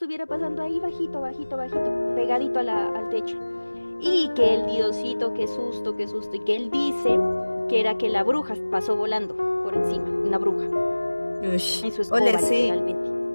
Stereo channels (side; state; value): both; inverted; correlation -1.00